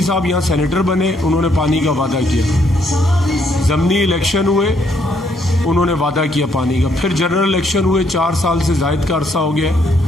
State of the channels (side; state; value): both; normal; correlation 0.71